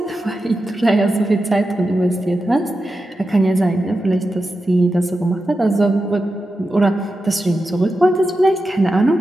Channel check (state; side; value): normal; both; correlation 0.90